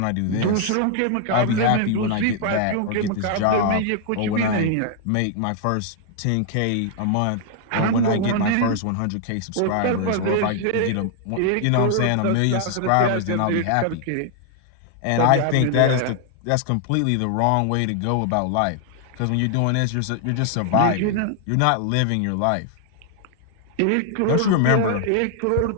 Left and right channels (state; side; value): different; both; correlation 0.00